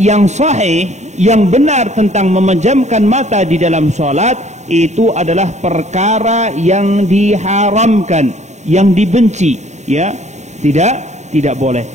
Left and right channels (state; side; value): late; left; 0.33 ms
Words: yang sahih, yang benar tentang memejamkan mata di dalam salat itu adalah perkara yang diharamkan, yang dibenci, ya, tidak boleh.